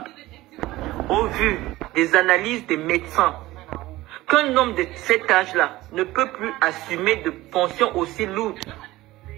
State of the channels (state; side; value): quieter; left; 17.7 dB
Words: au vu des analyses des médecins, qu'un homme de cet âge-là ne peut plus assumer de fonctions aussi lourdes,